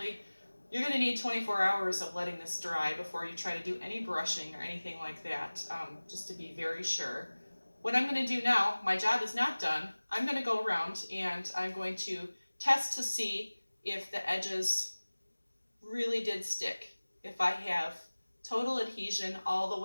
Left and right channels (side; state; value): both; inverted; correlation -1.00